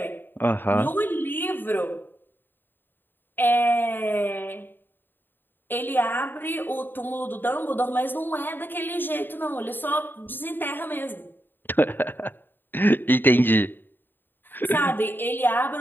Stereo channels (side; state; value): right; late; 0.094 ms